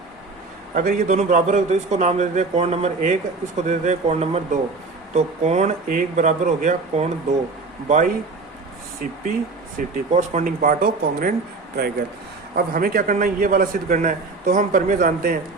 अगर ये दोनों बराबर हो तो इसको नाम दे देते हैं कोण नंबर 1, इसको दे देते हैं कोण नंबर 2। तो कोण 1 बराबर हो गया कोण 2 by CP city, corresponding part of congruent triangle. अब हमें क्या करना है, ये वाला सिद्ध करना है। तो हम प्रमेय जानते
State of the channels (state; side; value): quieter; left; 3.8 dB